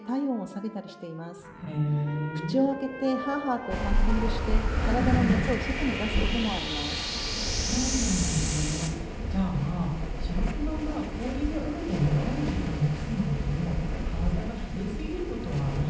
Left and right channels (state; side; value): identical; both; correlation 1.00